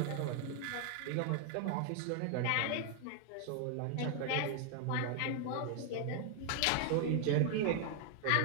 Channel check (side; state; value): both; different; correlation 0.00